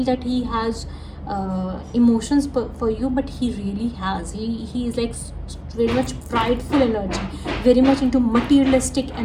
that he has emotions for you, but he really has. He is like very much prideful energy, very much into materialistic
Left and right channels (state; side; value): identical; both; correlation 1.00